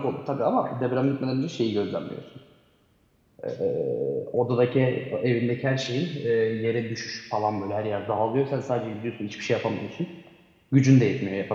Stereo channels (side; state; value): both; identical; correlation 1.00